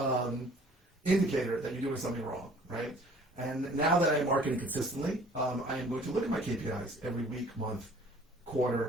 indicator that you're doing something wrong, right? And now that I'm marketing consistently, I am going to look at my KPIs every week, month,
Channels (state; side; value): normal; both; correlation 0.53